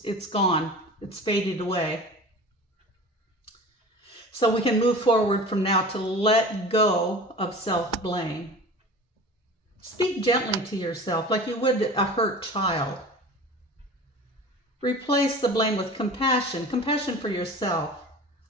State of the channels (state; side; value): normal; both; correlation 0.38